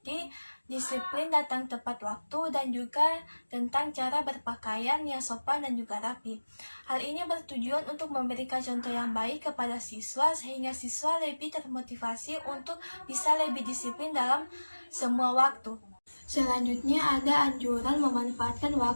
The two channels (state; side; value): inverted; both; correlation -1.00